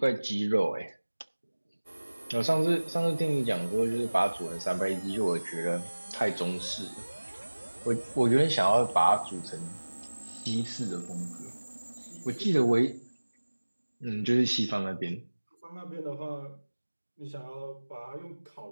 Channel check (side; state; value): both; inverted; correlation -1.00